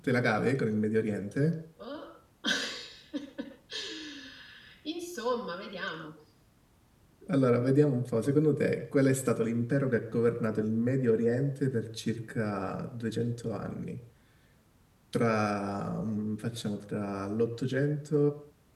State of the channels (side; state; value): both; identical; correlation 1.00